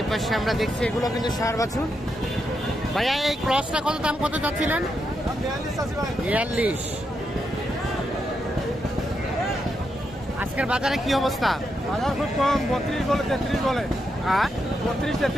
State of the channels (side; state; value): both; normal; correlation 0.83